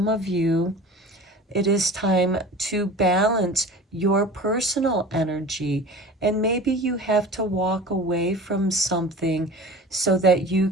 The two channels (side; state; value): both; normal; correlation 0.38